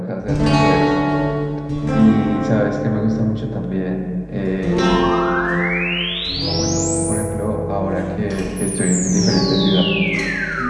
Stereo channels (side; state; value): both; identical; correlation 1.00